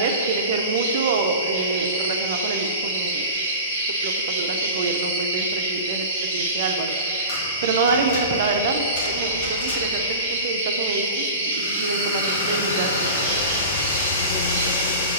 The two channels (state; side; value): inverted; both; correlation -0.33